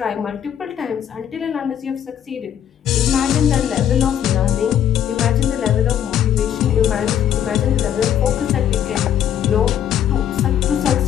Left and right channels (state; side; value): quieter; right; 9.9 dB